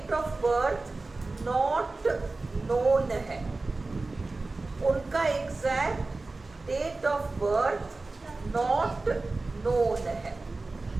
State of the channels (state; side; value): quieter; left; 3.4 dB